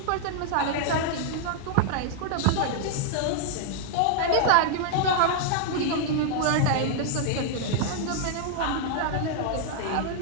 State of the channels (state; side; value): different; both; correlation 0.00